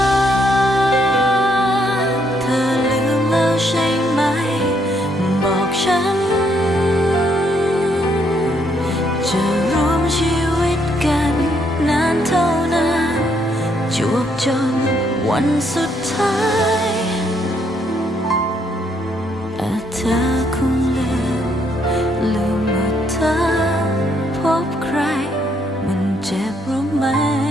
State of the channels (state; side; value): normal; both; correlation 0.72